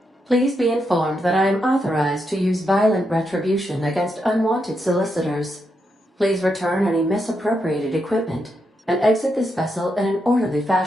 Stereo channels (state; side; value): normal; both; correlation 0.82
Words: Please be informed that I am authorized to use violent retribution against unwanted solicitors. Please return any misappropriated equipment and exit this vessel in an orderly